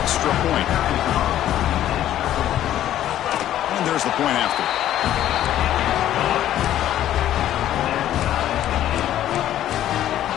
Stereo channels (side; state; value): right; quieter; 12.2 dB